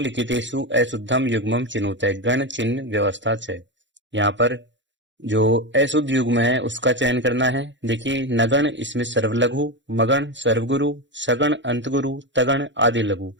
अशुद्धम युग्मम चिनुते, गण चिन्ह व्यवस्था च। यहाँ पर जो अशुद्ध युग्म है उसका चयन करना है। देखिए नगण, इसमें सर्वलघु, मगण सर्वगुरु, सगण अंतगुरु, तगण आदि लघु।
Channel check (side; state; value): left; late; 0.54 ms